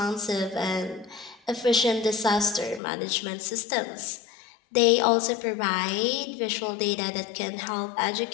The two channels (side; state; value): right; drops out; at 2.8 s